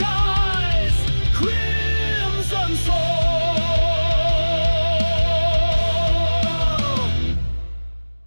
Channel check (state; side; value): inverted; both; correlation -1.00